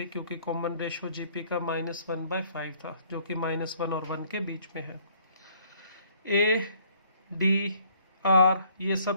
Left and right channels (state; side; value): inverted; both; correlation -0.62